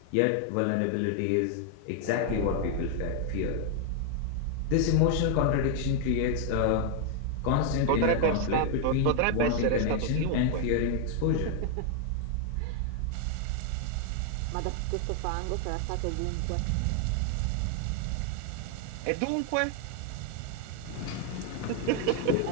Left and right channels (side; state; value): both; different; correlation 0.00